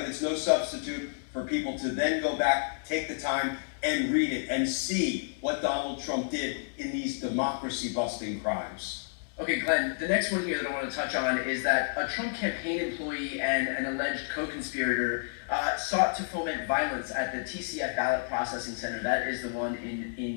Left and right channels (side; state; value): right; silent; digital silence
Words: it's no substitute for people to then go back, take the time, and read it, and see what Donald Trump did in these democracy-busting crimes. Okay, Glenn, the next one here that I want to touch on is that a Trump campaign employee and an alleged co-conspirator sought to foment violence at the TCF Ballot Processing Center. That is the one in